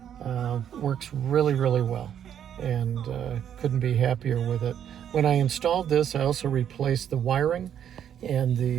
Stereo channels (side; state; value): left; quieter; 9.4 dB